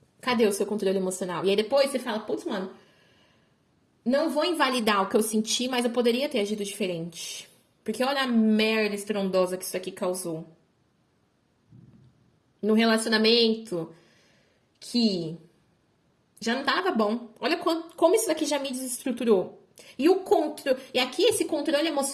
Cadê o seu controle emocional? E aí depois você fala, putz, mano, não vou invalidar o que eu senti, mas eu poderia ter agido diferente. Porque olha a merda estrondosa que isso aqui causou. No relacionamento que já não tava bom. Olha como isso daqui já me desestruturou. E aqui esse controle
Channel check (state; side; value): identical; both; correlation 1.00